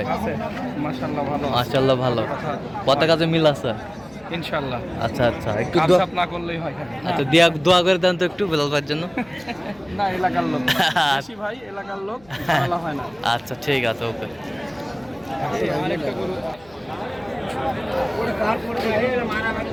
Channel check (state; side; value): noise; left; hum, 27 dB below the sound